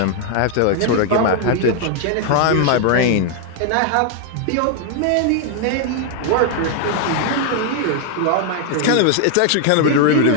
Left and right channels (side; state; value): both; different; correlation 0.00